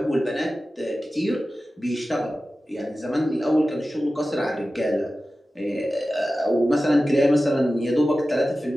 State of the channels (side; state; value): both; normal; correlation 0.95